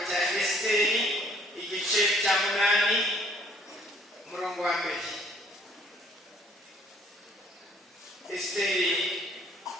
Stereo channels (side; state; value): both; normal; correlation 0.60